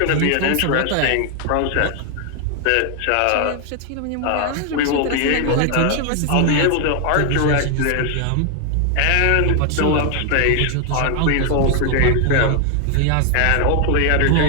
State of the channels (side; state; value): both; different; correlation 0.00